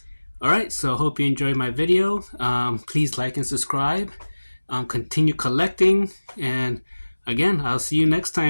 Alright, so I hope you enjoyed my video. Please like and subscribe. Continue collecting, and again, I'll see you next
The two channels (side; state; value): both; inverted; correlation -1.00